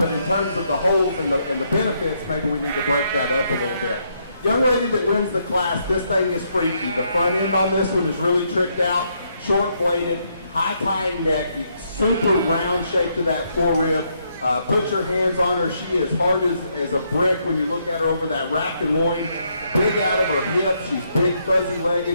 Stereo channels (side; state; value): both; inverted; correlation -0.75